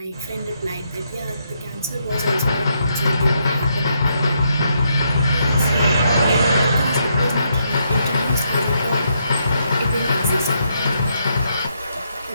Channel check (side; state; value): both; inverted; correlation -0.77